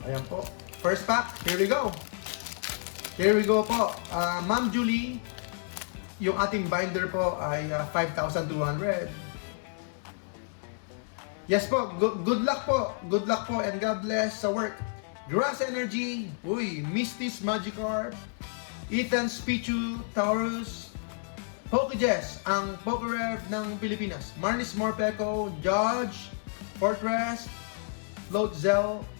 Ayan po. First pack, here we go. Here we go po. Ma'am Julie, yung ating binder po ay 5,200. Yes po, good luck po. Good luck po and God bless sa work. Grass Energy, uy, Misty's Magikarp, Ethan's Pichu, Taurus, PokeJess, ang PokeRev ng Pilipinas. Marnis Morpeko, Judge, Fortress, Floatzel,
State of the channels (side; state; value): right; silent; 58 dB below the other